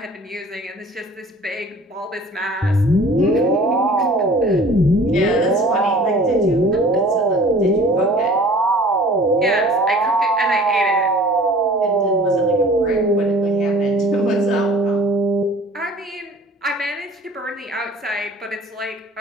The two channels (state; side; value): normal; both; correlation 0.48